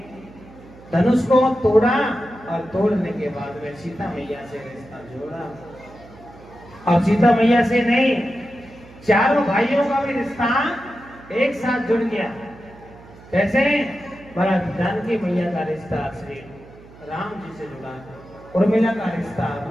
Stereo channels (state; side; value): noise; right; hum, 21 dB below the sound